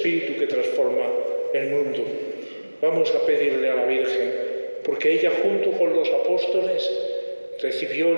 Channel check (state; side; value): inverted; both; correlation -1.00